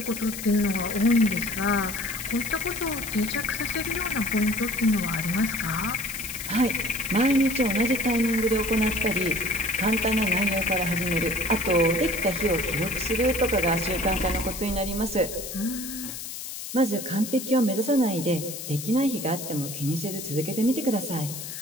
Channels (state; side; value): noise; left; hiss, 9 dB below the sound